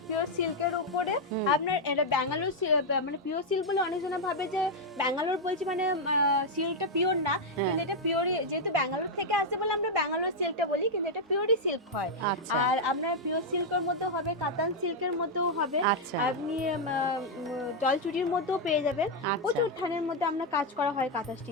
পিওর সিল্কের উপরে আপনার এটা ব্যাঙ্গালোর মানে পিওর সিল্ক বলে অনেকজনা ভাবে যে ব্যাঙ্গালোর বলছি মানে সিল্কটা পিওর না, কিন্তু এটা পিওরই, যেহেতু ব্যাঙ্গালোর থেকে আসে বলে আমরা ব্যাঙ্গালোর সিল্কটা বলি, কিন্তু এটা পিওরই সিল্ক হয়। আর আপনার পিওর সিল্কের মধ্যে হবে, কাতান সিল্কের মধ্যেও হবে, আপনি জলচুরির মধ্যেও পেয়ে যাবেন, প্রচুর থানের মধ্যে আমরা কাজ করা হয় কাঁথা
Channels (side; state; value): both; normal; correlation 0.00